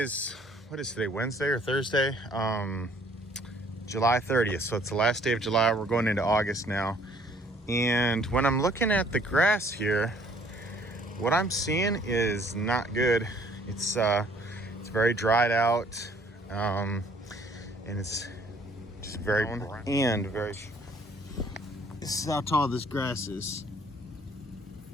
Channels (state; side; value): normal; both; correlation 0.59